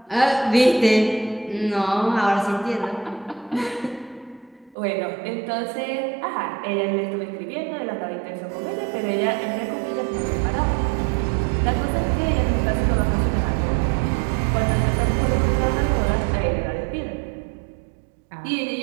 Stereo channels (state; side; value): drops out; left; at 4.8 s